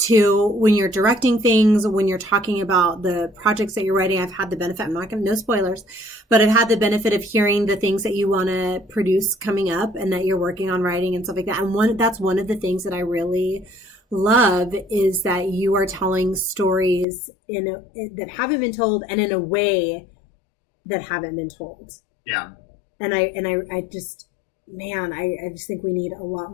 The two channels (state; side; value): drops out; right; at 17.1 s